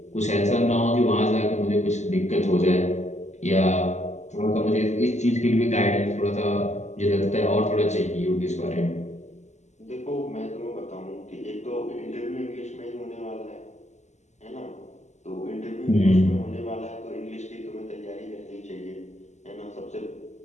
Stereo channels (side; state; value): right; late; 0.33 ms